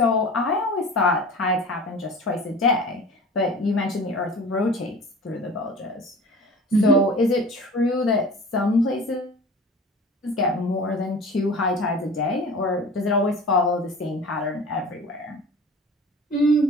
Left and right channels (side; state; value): both; normal; correlation 0.40